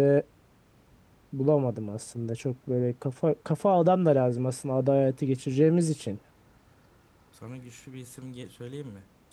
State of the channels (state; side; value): identical; both; correlation 1.00